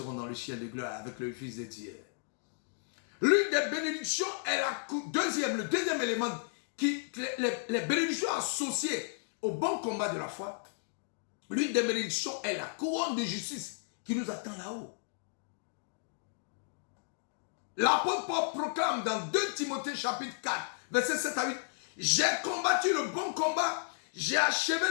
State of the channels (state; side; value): silent; right; digital silence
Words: dans le ciel de gloire avec le Fils de Dieu. L'une des bénédictions est le deuxième élément, les bénédictions associées au bon combat de la foi. L'une des bénédictions est la couronne de justice qui nous attend là-haut. L'apôtre Paul proclame dans 2 Timothée chapitre 4, verset 7 à 8, « J'ai combattu le bon combat, j'ai achevé